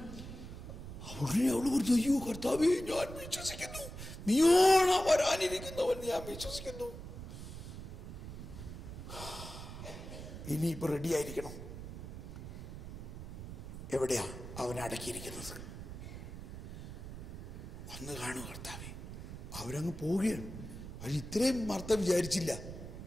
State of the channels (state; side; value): noise; right; rumble, 10 dB below the sound